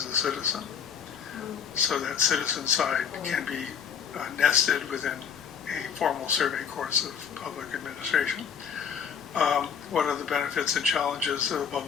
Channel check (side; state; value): right; quieter; 7.2 dB